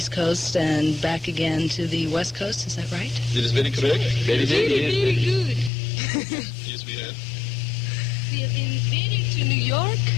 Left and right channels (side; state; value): right; drops out; at 5.7 s